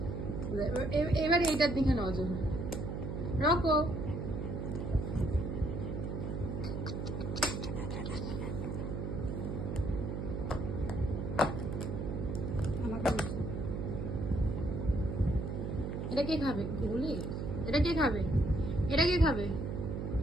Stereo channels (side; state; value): right; noise; hum, 3 dB below the sound